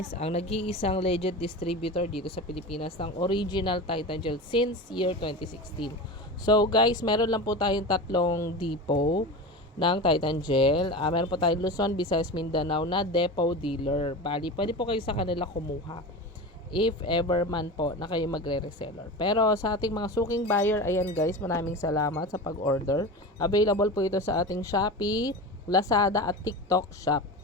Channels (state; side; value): normal; both; correlation 0.28